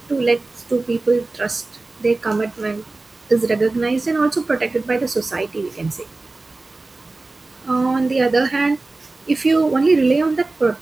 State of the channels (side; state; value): left; quieter; 3.3 dB